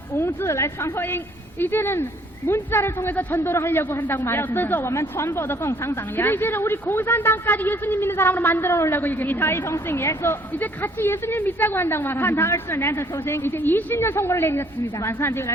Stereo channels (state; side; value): normal; both; correlation 0.61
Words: 文字来传福音， 이제는 문자를 통해서 전도를 하려고 한다고 要制 말했습니다. 作我们传播的共产党 근데 员， 이제는 우리 공산당까지 예수님 믿는 사람으로 만들어 놓으려고 与他 얘기했습니다. 一同信耶稣， 이제 같이 예수님 믿자고 한다고 看 말합니다. 他24年的头心， 이제 20년 선거를 내렸습니다. 晚上就